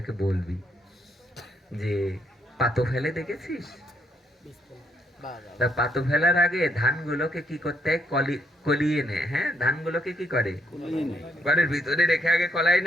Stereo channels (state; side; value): normal; both; correlation 0.74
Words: বলবি যে পাতো ফেলে দেখেছিস? তা পাতো ফেলার আগে ধানগুলোকে কি করতে হয়? কলিয়ে নেয়। হ্যাঁ, ধানগুলোকে কি করে? ঘরের ভিতরে রেখে আগে কলাই